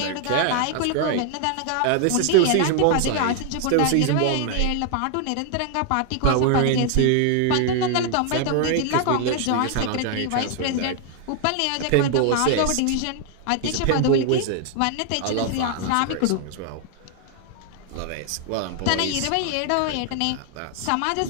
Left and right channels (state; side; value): different; both; correlation 0.00